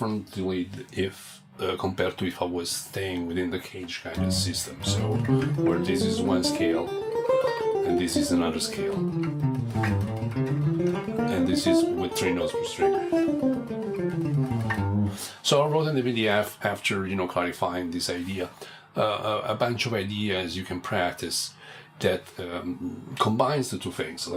if compared to if I was staying within the cage kind of system. So where this is one scale and this is another scale, and this is with 3 notes per string. So I wrote in the PDF after clarifying this idea a bunch of ideas you can practice that combines the 2 things.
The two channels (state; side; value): identical; both; correlation 1.00